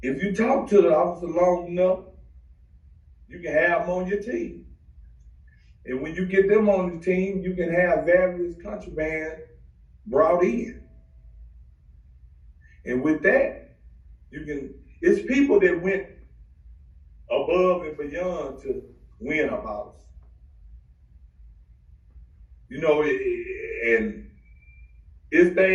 if you talk to the officer long enough, you can have them on your team. And when you get them on the team, you can have various contraband brought in. And with that, it's people that went above and beyond to win a boss. You know, and it's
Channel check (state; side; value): identical; both; correlation 1.00